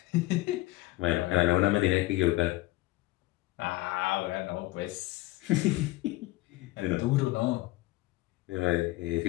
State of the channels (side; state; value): right; quieter; 18.9 dB